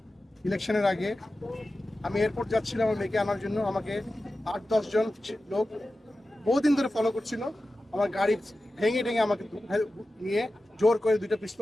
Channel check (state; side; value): normal; both; correlation 0.94